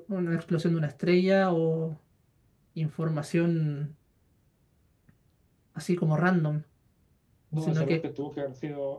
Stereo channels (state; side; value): identical; both; correlation 1.00